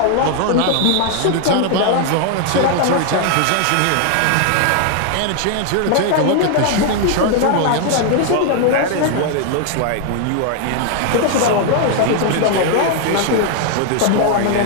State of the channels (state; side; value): different; both; correlation 0.00